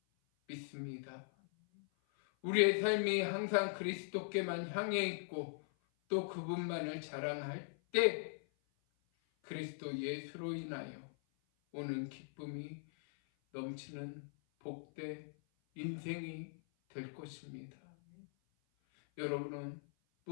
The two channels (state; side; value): silent; right; 51 dB below the other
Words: 믿습니다. 우리의 삶이 항상 그리스도께만 향해 있고 또 그분만을 자랑할 때 그리스도 예수로 인하여 오는 기쁨이 넘치는 복된 인생이 될 것입니다. 여러분은